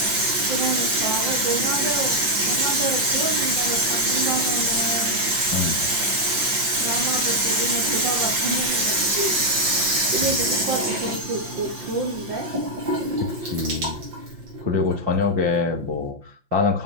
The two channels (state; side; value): late; left; 5.7 ms